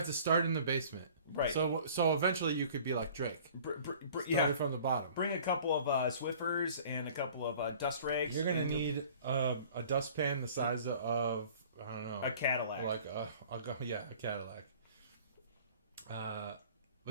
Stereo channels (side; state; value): both; inverted; correlation -0.48